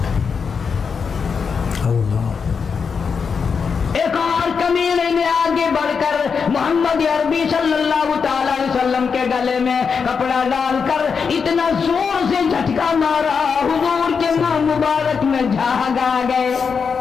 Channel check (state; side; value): quieter; right; 5.8 dB